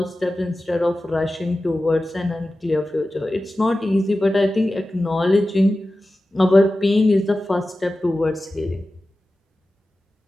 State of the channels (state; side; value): normal; both; correlation 0.94